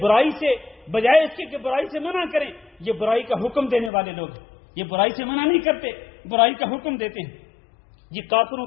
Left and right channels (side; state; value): right; drops out; at 3.9 s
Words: برائی سے بجائے اس کے کہ برائی سے منع کریں، یہ برائی کا حکم دینے والے لوگ ہیں. یہ برائی سے منع نہیں کرتے، برائی کا حکم دیتے ہیں. یہ کافروں